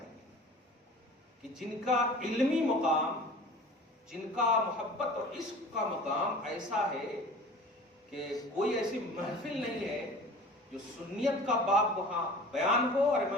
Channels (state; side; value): normal; both; correlation 0.42